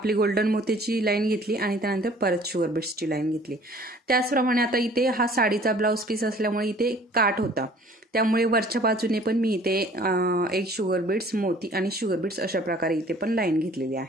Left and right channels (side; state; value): both; normal; correlation 0.53